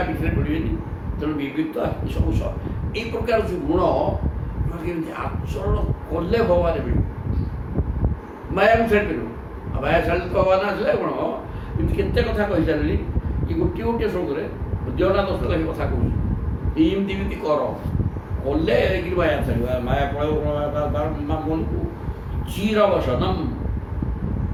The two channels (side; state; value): both; identical; correlation 1.00